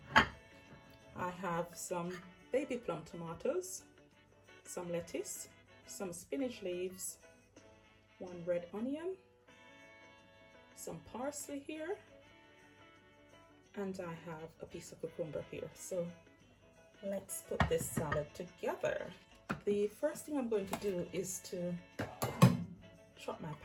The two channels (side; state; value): both; identical; correlation 1.00